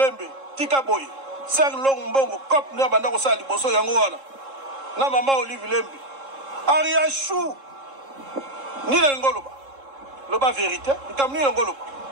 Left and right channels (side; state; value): left; late; 3.7 ms